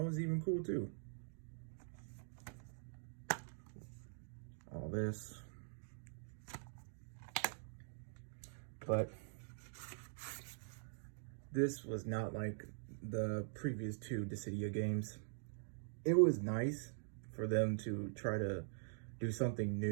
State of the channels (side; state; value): left; silent; digital silence